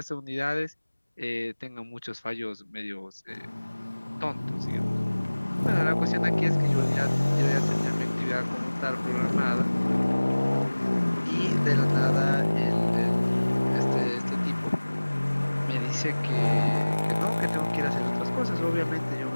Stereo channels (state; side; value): inverted; both; correlation -1.00